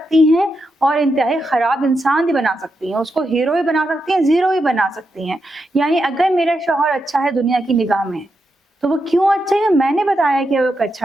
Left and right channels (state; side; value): normal; both; correlation 0.85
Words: हैं और इंतहाई ख़राब इंसान भी बना सकती हैं, उसको हीरो भी बना सकती हैं, ज़ीरो भी बना सकती हैं। यानी अगर मेरा शौहर अच्छा है दुनिया की निगाह में, तो वो क्यों अच्छा है? मैंने बताया कि वो एक